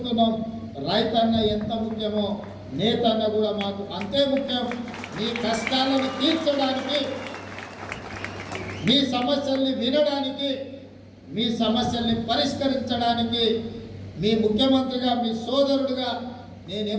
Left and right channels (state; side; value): identical; both; correlation 1.00